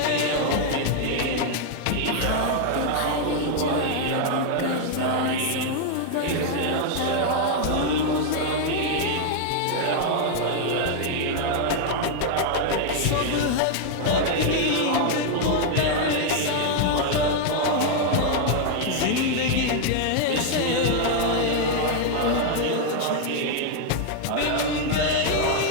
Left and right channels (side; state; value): both; different; correlation 0.00